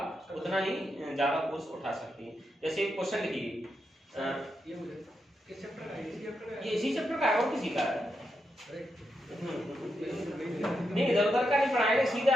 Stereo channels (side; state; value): both; normal; correlation 0.85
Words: उतना ही ज्यादा फोर्स उठा सकती है। जैसे एक क्वेश्चन लिखिए, किस चैप्टर का है? इसी चैप्टर का है? ये इसी चैप्टर का है और किसी का है? अरे, नहीं, इधर उधर का नहीं पढ़ाएंगे, सीधा